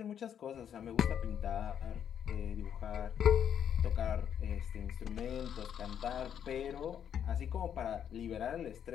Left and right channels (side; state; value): right; quieter; 8.9 dB